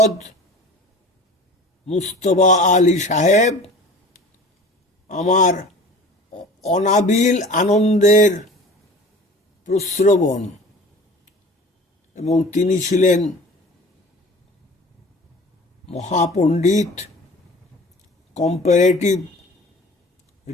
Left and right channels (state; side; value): normal; both; correlation 0.42